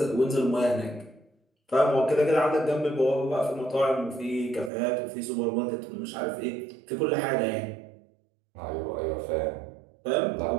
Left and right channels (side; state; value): left; drops out; at 4.7 s